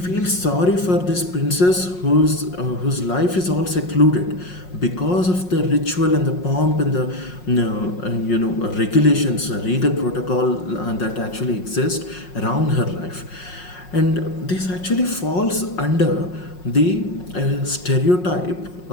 sorry for this princess whose life is all secluded because of the ritual and the pomp and the regulations, regal protocol that actually exist around her life. And this actually falls under the stereotype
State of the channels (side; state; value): right; late; 5.5 ms